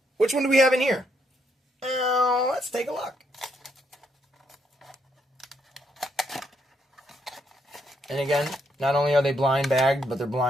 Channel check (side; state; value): both; normal; correlation 0.75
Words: which one do we have in here? Let's take a look. And again, not only are they blind bagged, but they're